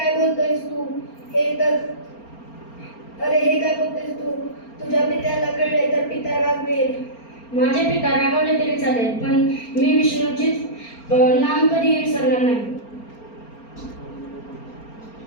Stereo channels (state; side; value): late; right; 4.3 ms